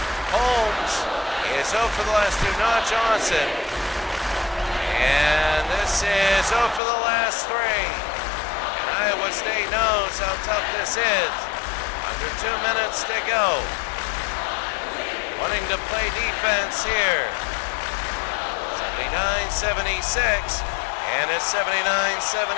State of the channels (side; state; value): right; drops out; at 6.8 s